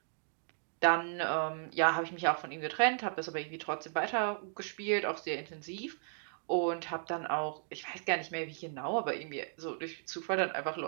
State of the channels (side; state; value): left; silent; digital silence